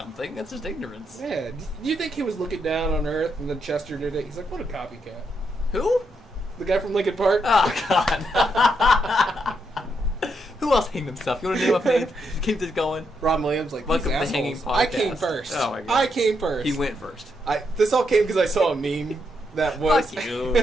That's just ignorance. Yeah. Do you think he was looking down on Earth and then Chester did it? He's like, what a copycat. Who? The guy from Linkin Park? Oh, God. Who else hanged himself? You want to name a name? Keep this going. Ron Williams, like, Welcome these to the Hanging assholes. I came Podcast. first. Oh, my God. I came first. He went first. This all came because I saw a meme that was. Fuck you.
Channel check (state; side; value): normal; both; correlation 0.80